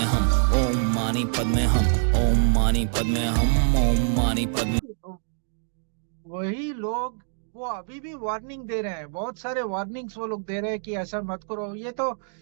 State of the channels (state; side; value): silent; left; digital silence